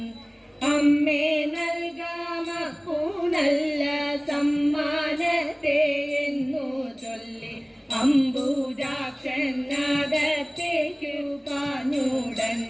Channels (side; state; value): both; identical; correlation 1.00